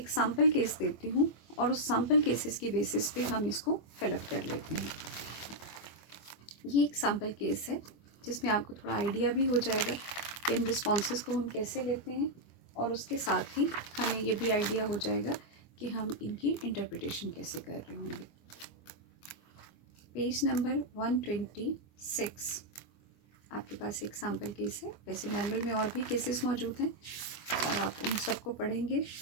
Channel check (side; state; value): right; late; 24 ms